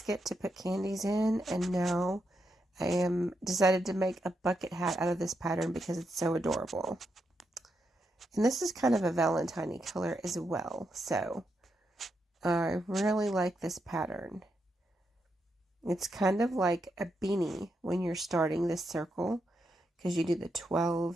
to put candies in, and now I am decided to make a bucket hat out of this pattern because it's so adorable. And this is kind of a Valentine color as well, so I really like this pattern. It's kind of like a beanie when you're starting this circle, because you do the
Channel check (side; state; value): both; normal; correlation 0.83